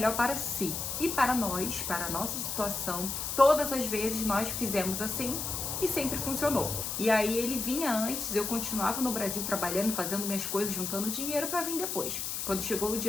para si. E para nós, para a nossa situação, todas as vezes nós fizemos assim e sempre funcionou. E aí ele vinha antes, eu continuava no Brasil trabalhando, fazendo minhas coisas, juntando dinheiro para vir depois. Quando chegou o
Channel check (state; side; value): noise; left; hiss, 3 dB below the sound